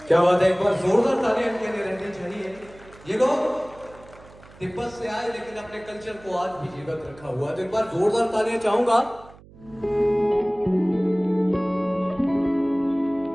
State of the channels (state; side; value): noise; right; hum, 23 dB below the sound